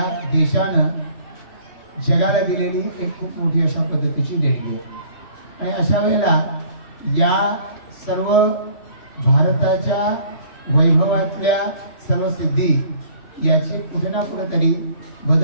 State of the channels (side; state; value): right; late; 3.0 ms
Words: देशानं जगाला दिलेली एक खूप मोठी अशा पद्धतीची देणगी आहे। आणि अशा वेळेला या सर्व भारताच्या वैभवातल्या सर्व सिद्धी याचे कुठे ना कुठेतरी